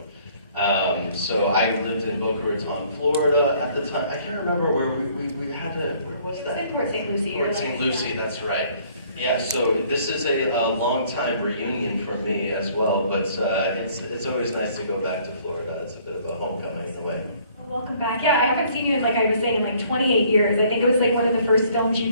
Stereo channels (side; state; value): both; inverted; correlation -0.59